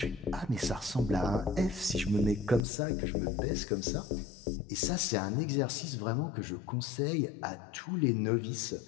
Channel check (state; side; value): drops out; right; at 2.7 s